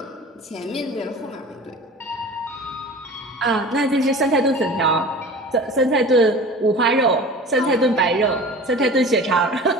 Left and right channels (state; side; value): normal; both; correlation 0.39